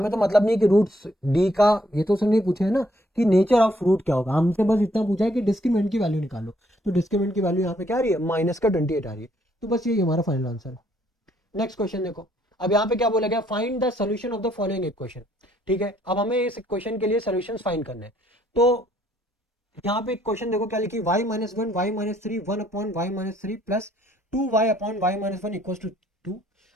तो मतलब नहीं है कि रूट्स d का, ये तो उसने नहीं पूछा है ना कि नेचर ऑफ रूट क्या होगा, हमसे बस इतना पूछा है कि डिस्क्रिमिनेंट की वैल्यू निकालो, तो डिस्क्रिमिनेंट की वैल्यू यहाँ पे क्या आ रही है माइनस का 28 आ रही है, तो बस ये हमारा फाइनल आंसर है। नेक्स्ट क्वेश्चन देखो, अब यहाँ पे क्या बोला गया find the solution of the following equation, ठीक है। अब हमें इस इक्वेशन के लिए सोल्यूशन फाइंड करने हैं, तो यहाँ पे क्वेश्चन देखो क्या लिखी y -1 y -3 1 upon y -3 plus 2y upon y -1 equal to 2।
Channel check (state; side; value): normal; both; correlation 0.68